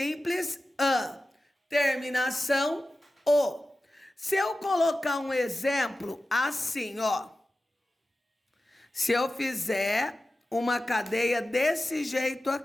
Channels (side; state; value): both; normal; correlation 0.94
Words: an. Terminação, o. Se eu colocar um exemplo assim, ó. Se eu fizer uma cadeia desse jeito